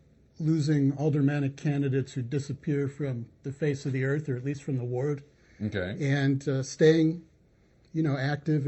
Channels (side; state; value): both; identical; correlation 1.00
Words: losing aldermanic candidates who disappear from the face of the earth, or at least from the ward. Okay. And staying,